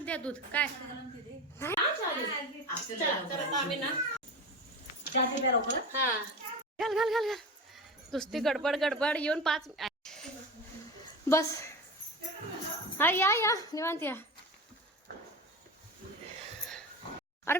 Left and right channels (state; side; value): normal; both; correlation 0.27